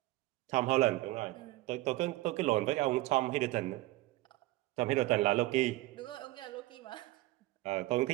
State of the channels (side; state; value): left; quieter; 18.6 dB